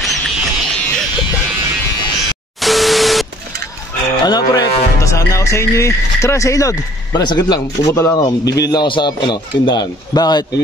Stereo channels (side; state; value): both; normal; correlation 0.57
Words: Ano pre, pupunta sana ako sa inyo eh. Tara sa ilog. Pare, sakit lang. Pupunta lang ako. Bibili lang ako sa tindahan. Bakit?